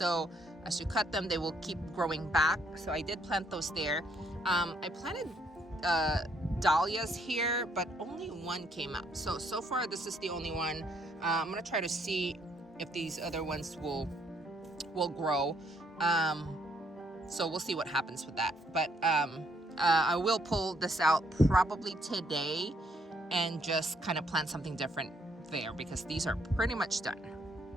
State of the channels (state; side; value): normal; both; correlation 0.70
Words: as you cut them, they will keep growing back. So I did plant those there. I planted dahlias here, but only one came up. So far this is the only one. I'm gonna try to see if these other ones will grow. So we'll see what happens with that. But I will pull this out probably today and just kind of plant something different there, because these are pretty much done.